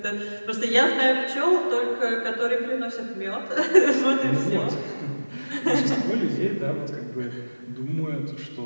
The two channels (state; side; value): inverted; both; correlation -1.00